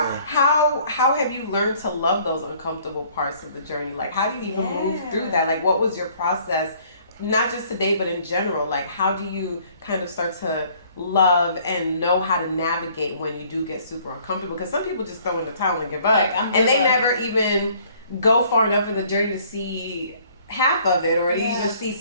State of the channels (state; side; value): inverted; both; correlation -0.59